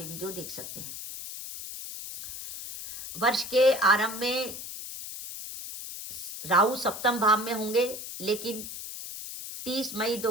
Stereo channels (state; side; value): noise; left; hiss, 9 dB below the sound